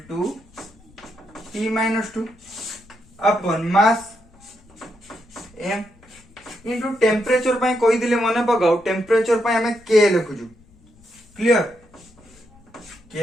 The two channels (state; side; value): noise; left; rumble, 28 dB below the sound